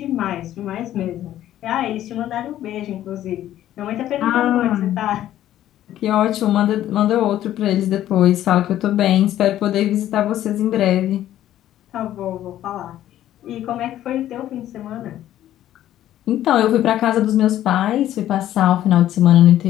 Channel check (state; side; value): quieter; right; 12.6 dB